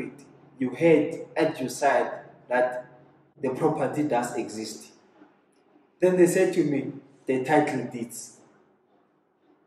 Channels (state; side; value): identical; both; correlation 1.00